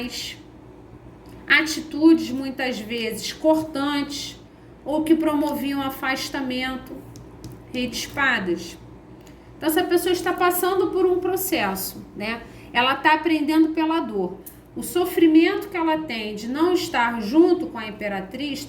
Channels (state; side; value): identical; both; correlation 1.00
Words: atitudes muitas vezes cortantes ou que promoviam afastamento. Rei de Espadas. Então essa pessoa está passando por um processo, né? Ela está aprendendo pela dor. O sofrimento que ela tem de não estar junto com a imperatriz